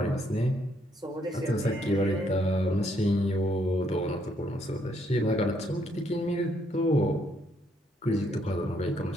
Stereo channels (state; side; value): normal; both; correlation 0.71